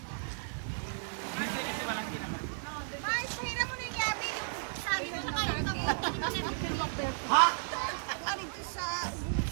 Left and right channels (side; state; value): left; silent; digital silence